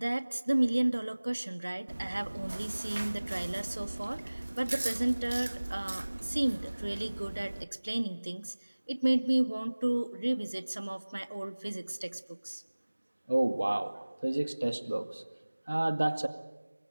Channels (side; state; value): both; inverted; correlation -1.00